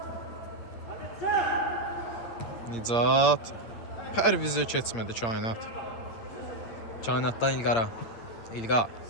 Nicat. Pərvizə keçmədi Kainat. Kainatdan İlqara. İlqar.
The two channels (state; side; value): late; right; 8.7 ms